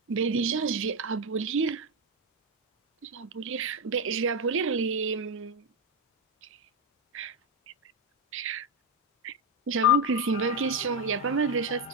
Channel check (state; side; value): normal; both; correlation 0.08